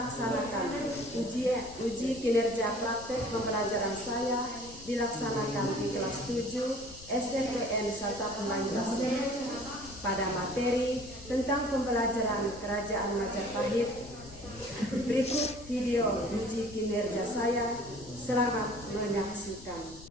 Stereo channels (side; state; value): left; noise; rumble, 18 dB below the sound